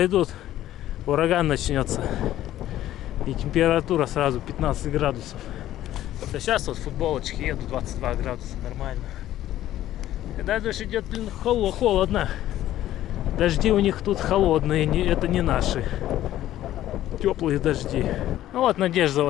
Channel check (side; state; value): right; quieter; 13.3 dB